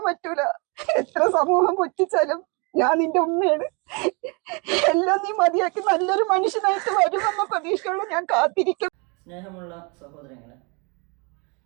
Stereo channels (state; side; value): quieter; left; 31.8 dB